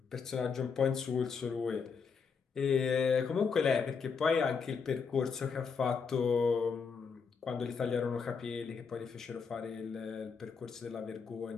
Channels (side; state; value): right; quieter; 5.7 dB